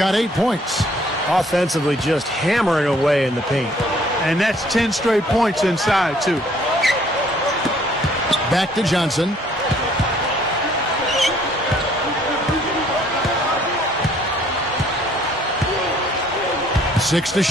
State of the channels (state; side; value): normal; both; correlation 0.61